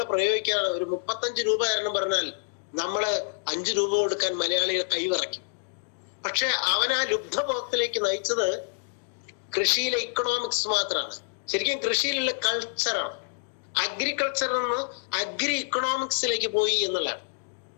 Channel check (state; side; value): silent; right; digital silence